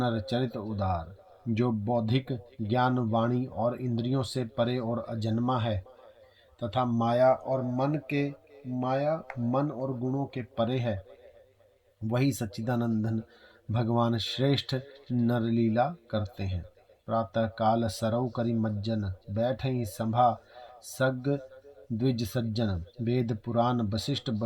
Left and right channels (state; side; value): identical; both; correlation 1.00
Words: चरित उदार। जो बौद्धिक ज्ञान वाणी और इंद्रियों से परे और अजन्मा है तथा माया मन और गुणों के परे है, वही सच्चिदानंदन भगवान श्रेष्ठ नरलीला करते हैं। प्रातः काल सरौ करि मज्जन, बैठई सभा सग द्विज सज्जन। वेद पुराण वशिष्ठ